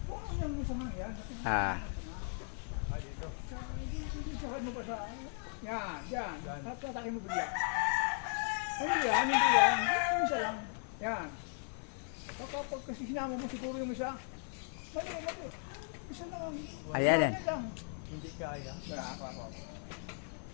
Puno yung gusto mo yan. Ah. Sakad mo pa sa, yan, yan. At hatake mo bigla. Hindi yan, hindi yan. Yung isa lang. Yan. Kapag kasi sinama mo siguro yung isa. Mali. Isa lang. Ayan. Hindi kaya. Wala ako.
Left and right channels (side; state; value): right; silent; 53 dB below the other